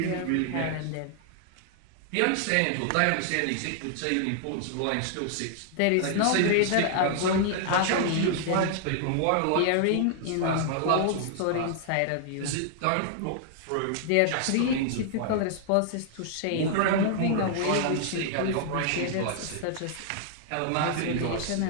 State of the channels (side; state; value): both; different; correlation 0.00